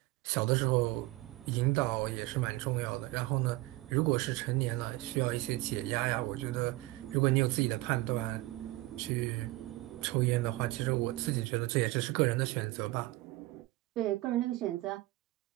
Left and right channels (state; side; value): quieter; left; 19.4 dB